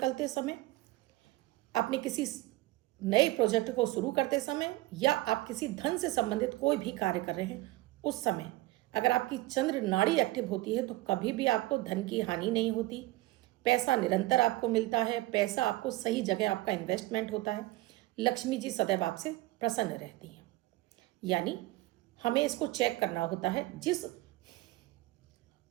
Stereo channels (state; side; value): quieter; left; 18.8 dB